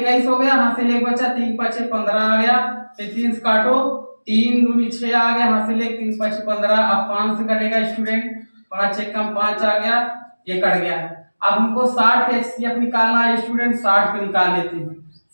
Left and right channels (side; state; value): both; inverted; correlation -1.00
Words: हो गया, हासिल 1 बचा, 3 5 15 आ गया। फिर 3 से काटो, 3 दूनी 6 आ गया, हासिल 1 3 5 15। अब 5 से कटेगा स्टूडेंट, 5 1 कम 5 आ गया, ये कट गया है। अब हमको 60 का एचसीएफ निकालना है स्टूडेंट। 60 को निकाल लेते हैं।